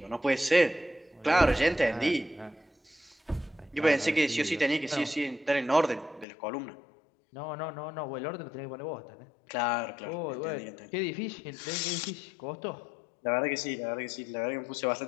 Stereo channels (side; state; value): right; drops out; at 6.2 s